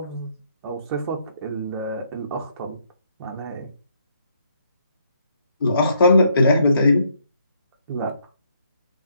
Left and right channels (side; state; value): both; inverted; correlation -0.71